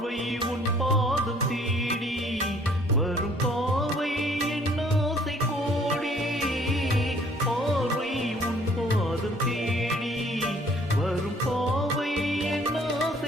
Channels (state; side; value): normal; both; correlation 0.58